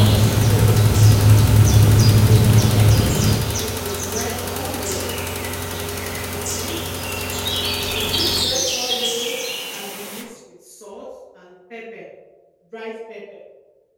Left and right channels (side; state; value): both; identical; correlation 1.00